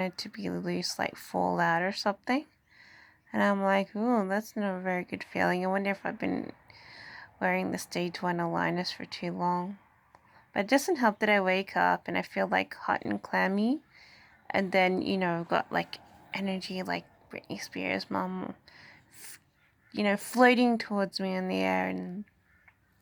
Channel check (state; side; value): identical; both; correlation 1.00